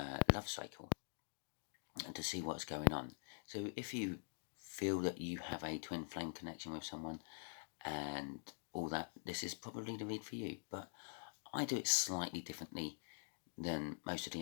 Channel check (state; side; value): silent; right; digital silence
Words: cycle to see what's going on. So if you feel that you have a twin flame connection with someone and all that, this is probably the read for you, but I do it slightly differently than most of the